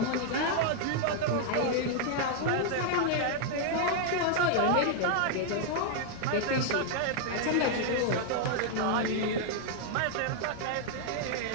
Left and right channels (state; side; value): different; both; correlation 0.00